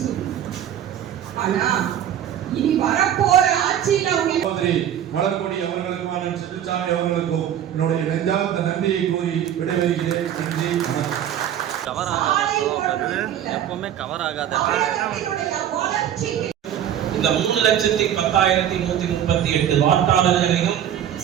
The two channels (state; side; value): quieter; left; 10.3 dB